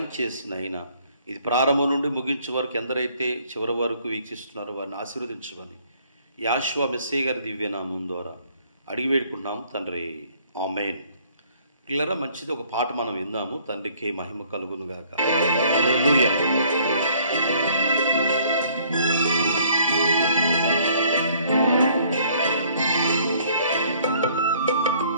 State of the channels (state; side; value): inverted; both; correlation -0.60